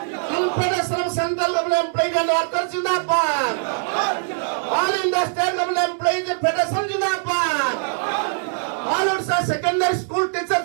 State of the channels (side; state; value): left; silent; 63 dB below the other